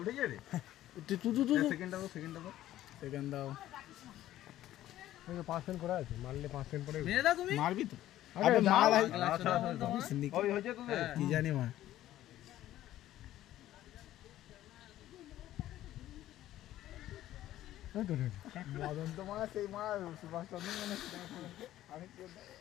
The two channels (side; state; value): right; quieter; 13.7 dB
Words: উঠে যাবে। সেকেন্ড দাও 5 করা আছে, মারলে 5 পরে মারবি তো। কি জানি মা মদন তো মা সেই মা সুভাষচন্দ্র মানে